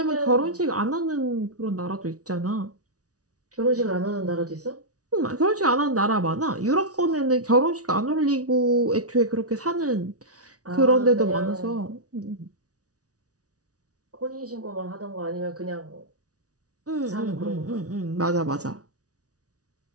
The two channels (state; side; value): late; left; 0.67 ms